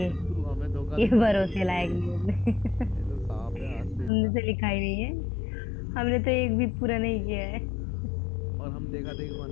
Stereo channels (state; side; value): drops out; right; at 4.1 s